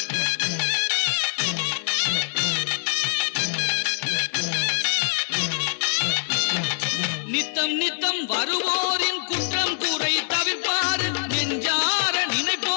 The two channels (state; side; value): silent; right; 56 dB below the other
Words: நித்தம் நித்தம் வருவோரின் குற்றம் குறை தவிர்ப்பாரு, நெஞ்சார